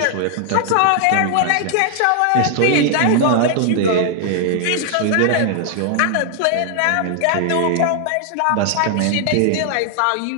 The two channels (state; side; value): different; both; correlation 0.00